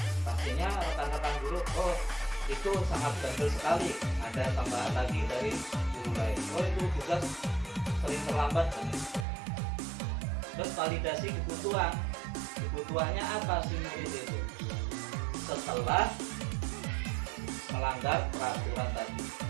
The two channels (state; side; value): drops out; left; at 9.2 s